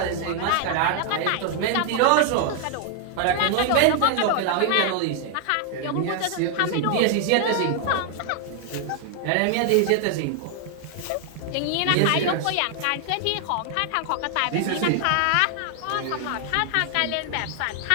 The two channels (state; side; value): different; both; correlation 0.00